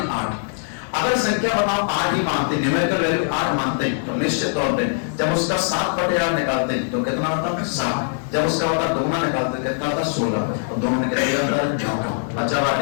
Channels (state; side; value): silent; right; 64 dB below the other